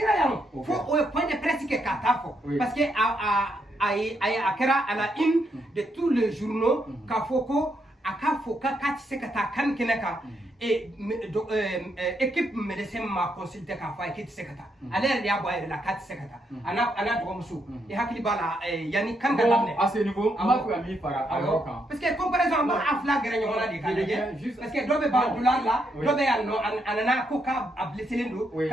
yan fo o ye point de presse kɛ k'a taa fɔ parce que a kɛra à la une de tous les journaux k'a fɔ ko a k'a fɔ k'a tɛ se ka taa kan kɛnɛ kan équipe médecin m'a consulté k'a fɔ a ye k'i tɛ se ka taa ale yɛrɛ de y'a bɔ a yɛrɛ la k'a tɛ se ka taa a n'a dɔgɔmuso i hakili b'a la yanni kan ka daminɛ à ce niveau an b'a fɛ ka min fara a yɔrɔ kan parce que comparaison an b'a fila gɛrɛ ɲɔgɔn na de k'a lajɛ parce que dɔ bɛ ban dollar la dɔ bɛ yan nɔ a nana ko k'a blesselen don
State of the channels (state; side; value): normal; both; correlation 0.77